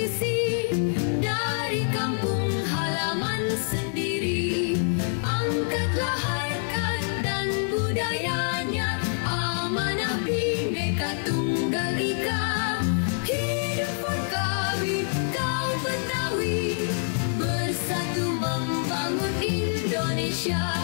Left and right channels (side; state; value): right; silent; 61 dB below the other